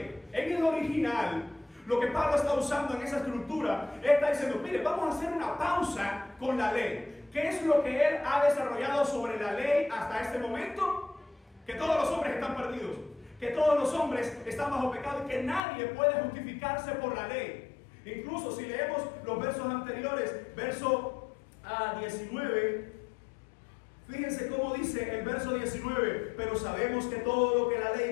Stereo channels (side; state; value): right; drops out; at 15.6 s